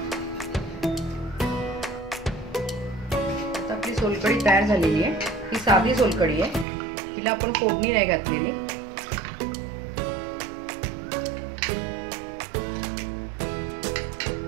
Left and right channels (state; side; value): drops out; left; at 6.7 s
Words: आता आपली सोलकढी तयार झालेली आहे। ही साधी सोलकढी आहे, तिला आपण फोडणी नाही घातलेली।